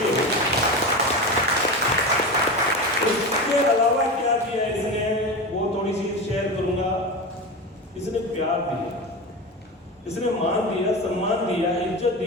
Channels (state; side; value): normal; both; correlation 0.23